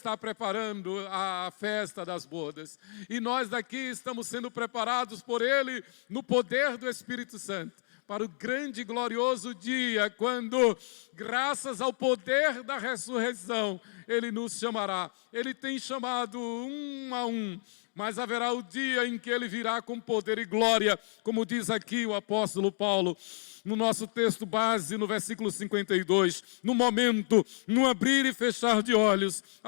preparando a festa das bodas. E nós daqui estamos sendo preparados por Ele no poder do Espírito Santo, para o grande e glorioso dia, quando, graças ao poder da ressurreição, Ele nos chamará. Ele tem chamado um a um, mas haverá o dia em que Ele virá com poder e glória, como diz aqui o apóstolo Paulo, no nosso texto base, no versículo 52, no momento, no abrir e fechar de olhos,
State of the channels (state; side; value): silent; right; 57 dB below the other